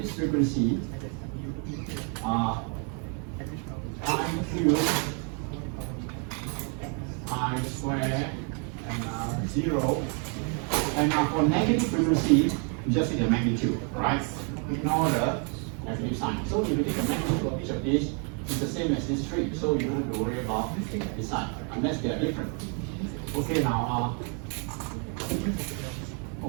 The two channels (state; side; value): quieter; left; 39.2 dB